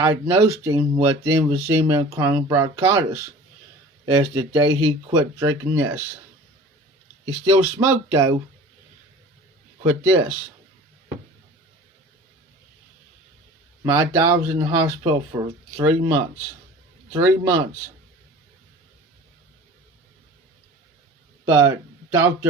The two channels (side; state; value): both; normal; correlation 0.42